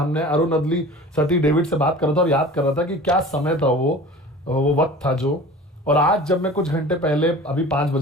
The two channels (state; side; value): normal; both; correlation 0.40